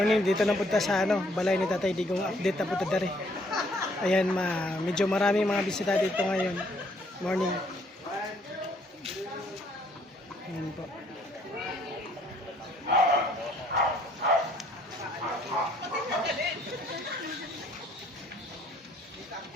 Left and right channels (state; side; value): normal; both; correlation 0.64